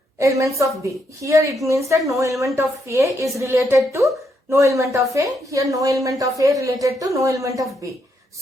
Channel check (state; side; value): normal; both; correlation 0.77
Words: elements of B. Here it means that no element of A is related to no element of A. Here no element of A related to no element of B.